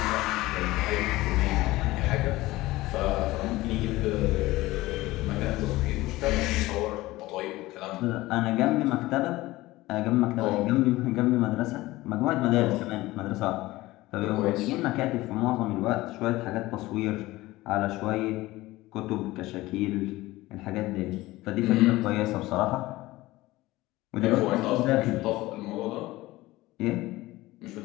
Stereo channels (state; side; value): quieter; right; 18.5 dB